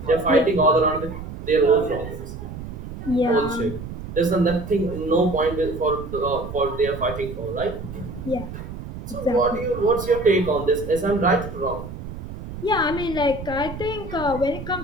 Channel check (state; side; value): noise; right; rumble, 10 dB below the sound